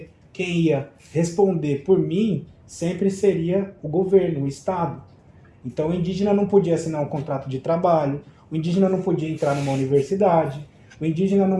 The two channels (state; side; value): identical; both; correlation 1.00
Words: quem ia responder por mim sempre seria o governo, o Estado. Então o indígena não podia assinar um contrato de trabalho, o indígena não podia entrar numa universidade, o indígena